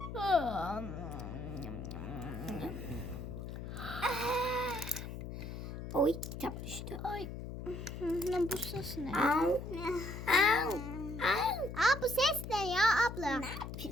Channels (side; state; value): left; noise; hum, 8 dB below the sound